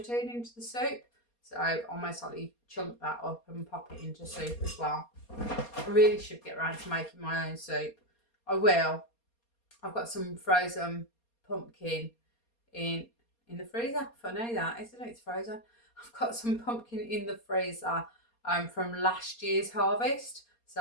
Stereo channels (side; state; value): right; late; 4.3 ms